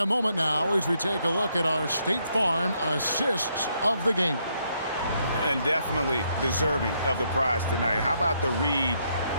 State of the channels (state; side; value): inverted; both; correlation -0.74